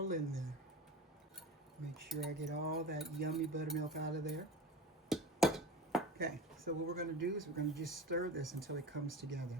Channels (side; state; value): both; normal; correlation 0.32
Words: in there. Make sure I get all that yummy buttermilk out of there. Okay, so what we're going to do is we're going to just stir this until it comes together.